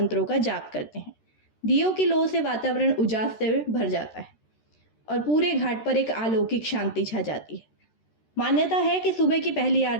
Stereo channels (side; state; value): right; late; 13 ms